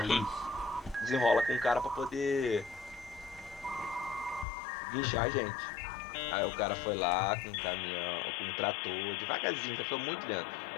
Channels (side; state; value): right; drops out; at 4.5 s